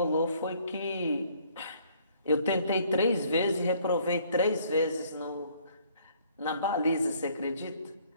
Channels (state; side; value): inverted; both; correlation -0.61